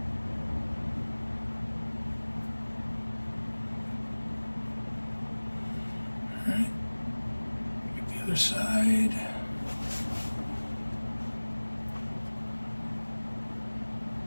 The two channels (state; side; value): inverted; both; correlation -1.00